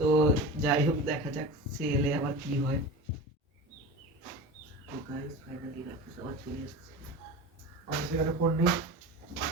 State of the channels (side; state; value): both; normal; correlation 0.31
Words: যাই হোক দেখা যাক সে এলে আবার কি হয়। তো গাইস ফাইনালি রাকেশ আবার চলে এসেছে। আমার সেখানে ফোন নেই।